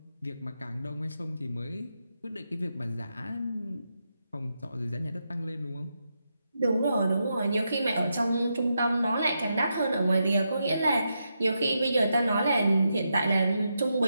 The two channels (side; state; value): both; inverted; correlation -0.84